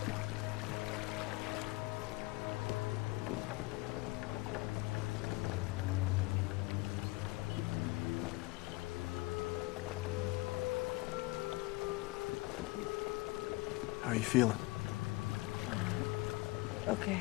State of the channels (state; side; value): quieter; right; 22.2 dB